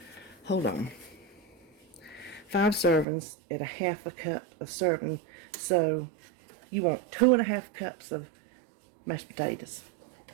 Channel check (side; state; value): left; drops out; at 3.1 s